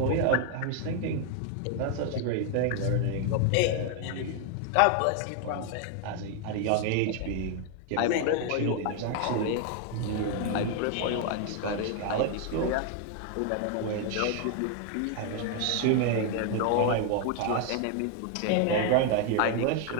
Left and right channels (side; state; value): both; different; correlation 0.00